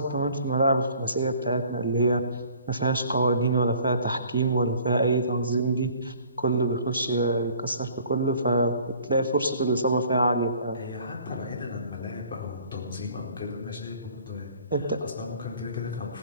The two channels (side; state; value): both; inverted; correlation -0.53